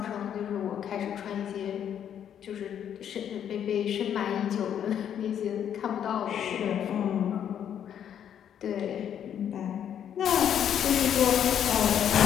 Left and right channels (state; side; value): quieter; right; 9.3 dB